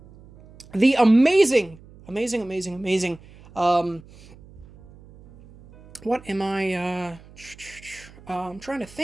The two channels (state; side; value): noise; right; hum, 22 dB below the sound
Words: the amazing, what am I, I'm trying to